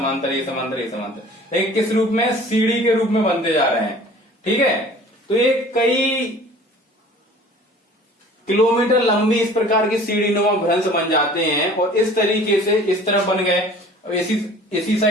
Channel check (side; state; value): both; normal; correlation 0.47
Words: ये समांतर, ये समांतर, लेकिन किस रूप में? सीढ़ी के रूप में बनते जा रहे हैं। ठीक है, तो ये कई किलोमीटर लंबी इस प्रकार की सीढ़ी नुमा भ्रंश बन जाते हैं। और इस तरीके से इस तरफ बन गए, इसी